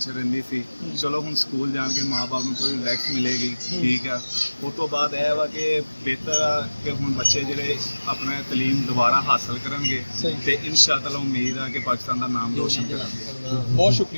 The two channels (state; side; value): inverted; both; correlation -1.00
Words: ਰਹਿੰਦੀ ਸੀ, ਚਲੋ ਹੁਣ ਸਕੂਲ ਜਾਣ ਕੇ ਮਾਂ-ਬਾਪ ਨੂੰ ਥੋੜੀ ਰਿਲੈਕਸ ਮਿਲੇਗੀ। ਠੀਕ ਆ, ਉਸ ਤੋਂ ਬਾਅਦ ਇਹ ਵਾ ਕਿ ਬਿਹਤਰ ਆ ਕਿ ਹੁਣ ਬੱਚੇ ਜਿਹੜੇ ਆਪਣਾ ਤਲੀਮ ਦੁਬਾਰਾ ਹਾਸਲ ਕਰਨਗੇ ਤੇ ਇਨਸ਼ਾਅੱਲਾ ਉਮੀਦ ਆ ਕਿ ਪਾਕਿस्तान ਦਾ ਨਾਮ ਰੋਸ਼ਨ ਕਰਾਂਗੇ। बहुत